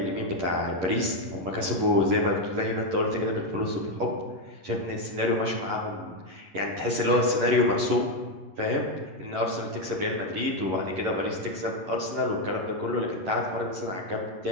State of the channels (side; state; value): left; late; 11 ms